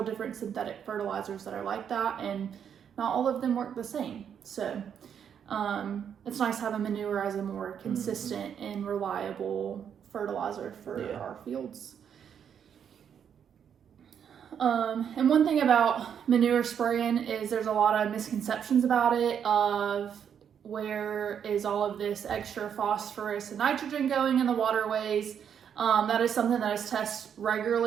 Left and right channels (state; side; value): quieter; left; 8.2 dB